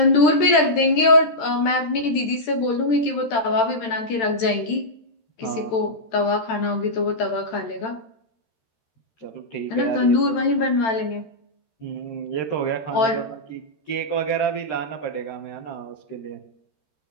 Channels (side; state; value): right; late; 13 ms